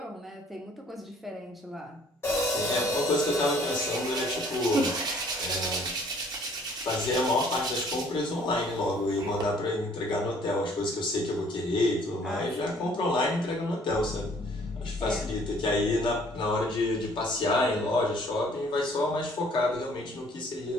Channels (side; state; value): both; normal; correlation 0.58